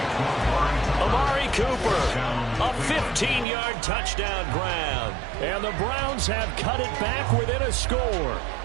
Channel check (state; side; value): drops out; left; at 3.5 s